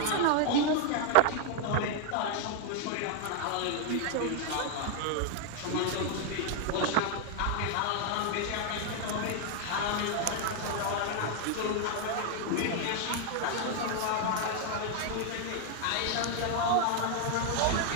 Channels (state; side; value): different; both; correlation 0.00